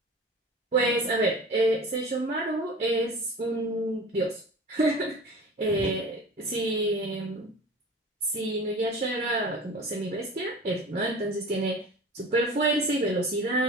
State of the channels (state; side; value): normal; both; correlation 0.38